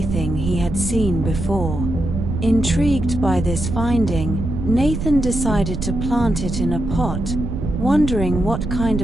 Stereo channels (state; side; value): noise; right; rumble, 4 dB below the sound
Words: he had seen before. Intrigued by this finding, Nathan decided to plant it in a pot, wondering what kind